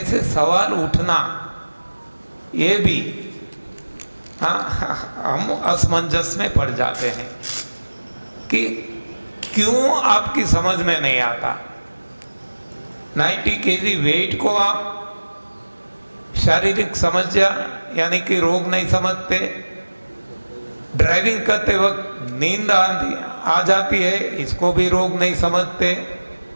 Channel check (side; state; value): both; inverted; correlation -1.00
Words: सवाल उठना ये भी, हाँ, हम असमंजस में पड़ जाते हैं कि क्यों आपकी समझ में नहीं आता। 90 kg वेट को आप शारीरिक समस्या यानी कि रोग नहीं समझते, ड्राइविंग करते वक्त नींद आ जाती है, इसको भी रोग नहीं समझते।